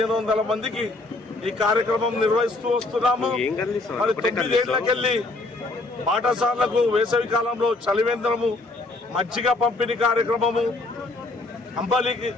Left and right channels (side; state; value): right; quieter; 3.0 dB